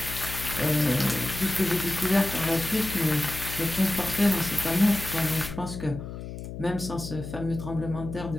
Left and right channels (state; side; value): noise; left; hum, 9 dB below the sound